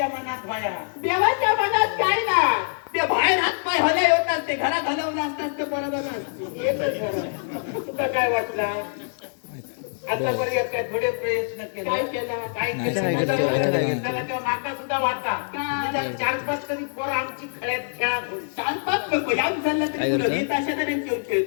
मनात भया देवाच्या मनात काय ना ते बाहेर हात पाय हलय होतात ते घरात हलवलं असतात ते पोरा जाणं येतच खरं. तुका काय वाटला आतापर्यंत काय थोडे प्रयत्न केले काय केलं काय नाही, केलं काय केलं, काय केलं? त्याला तेव्हा माका सुद्धा वाटा काय? 4-5 तरी पोरं आमची खळ्यात खेळात होती. शांतच नको ह्याच झालं तरी काय तुला करतो? येत अशा तऱ्हेने खेळ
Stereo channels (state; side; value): silent; right; digital silence